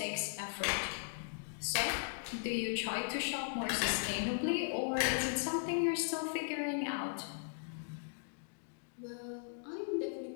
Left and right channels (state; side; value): silent; right; digital silence